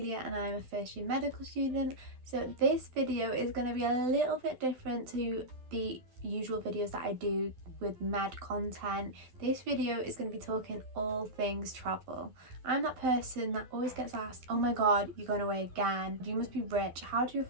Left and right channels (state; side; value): late; left; 12 ms